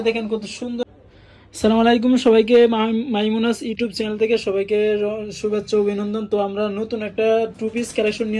দেখেন কত সুন্দর। আসসালামু আলাইকুম সবাইকে, মাইমুনাস ইউটিউব চ্যানেল থেকে সবাইকে শুভেচ্ছা অভিনন্দন। তো আমরা নতুন একটা টু পিস কালেকশন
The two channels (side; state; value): both; identical; correlation 1.00